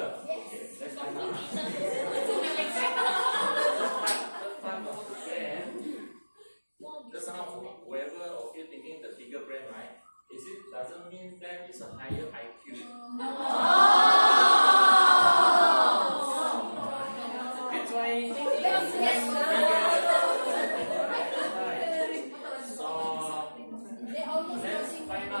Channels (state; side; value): inverted; both; correlation -1.00